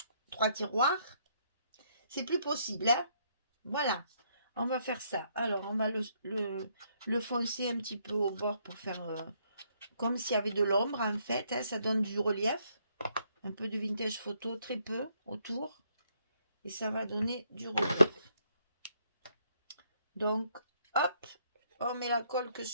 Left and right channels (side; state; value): both; inverted; correlation -0.71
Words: 3 tiroirs, c'est plus possible. Hein. Voilà, on va faire ça. Alors, on va le foncer un petit peu au bord pour faire comme s'il y avait de l'ombre en fait. Hein, ça donne du relief. Un peu de vintage photo, très peu autour. Et ça va donner du relief. Donc, hop, on met la colle que